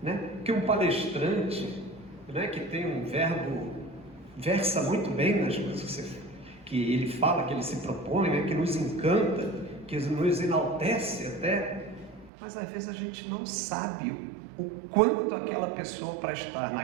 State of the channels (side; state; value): left; drops out; at 12.3 s